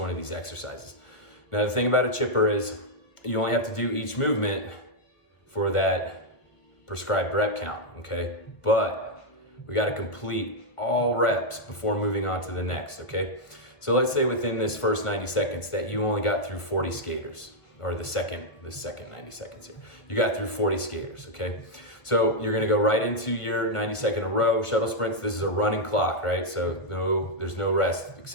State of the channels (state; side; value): late; right; 1.6 ms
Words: of these exercises. Now the thing about a chipper is you only have to do each movement for that prescribed rep count, okay? But we gotta complete all reps before moving on to the next, okay? So let's say within this first 90 seconds that you only got through 40 skaters, or the second 90 seconds here. You got through 40 skaters, okay? So you're gonna go right into your 90-second row, shuttle sprints. This is a running clock, right? So there's no rest